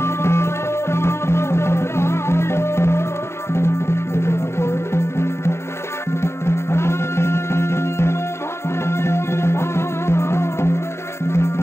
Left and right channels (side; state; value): right; late; 0.13 ms